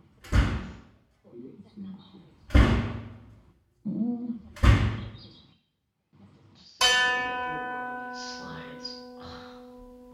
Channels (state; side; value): identical; both; correlation 1.00